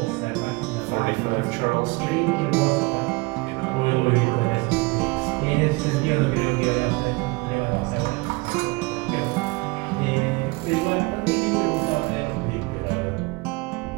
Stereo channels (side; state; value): left; quieter; 25.2 dB